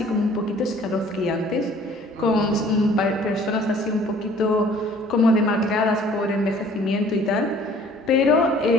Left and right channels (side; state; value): both; normal; correlation 0.54